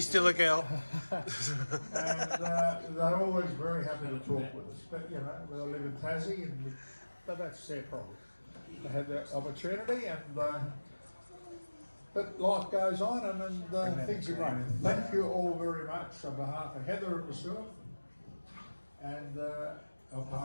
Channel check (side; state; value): both; inverted; correlation -1.00